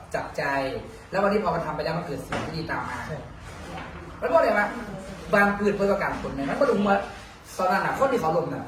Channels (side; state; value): both; identical; correlation 1.00